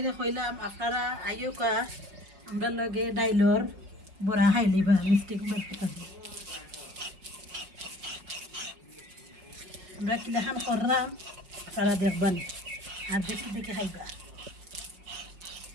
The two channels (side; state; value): left; late; 5.5 ms